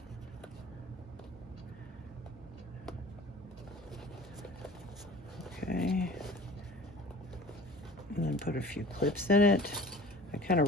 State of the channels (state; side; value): normal; both; correlation 0.43